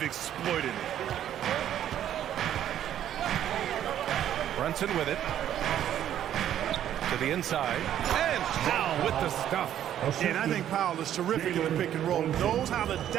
exploited it. Brunson with it. To the inside. And Powell with the stuff. And I think Powell is terrific in the pick and roll. Knows how to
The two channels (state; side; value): quieter; left; 10.9 dB